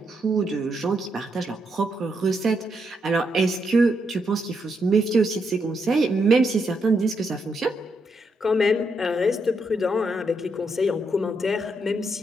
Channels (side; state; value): both; normal; correlation 0.79